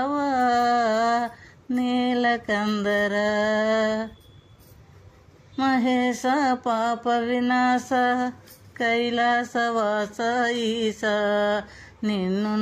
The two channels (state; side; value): identical; both; correlation 1.00